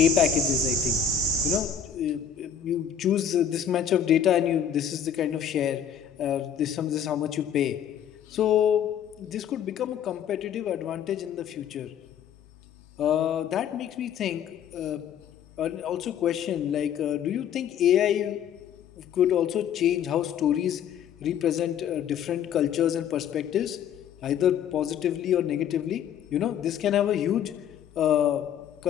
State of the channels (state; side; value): quieter; right; 8.4 dB